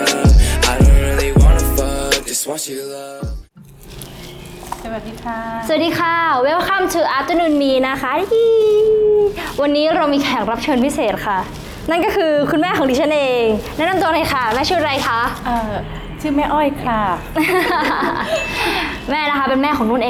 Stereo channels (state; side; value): identical; both; correlation 1.00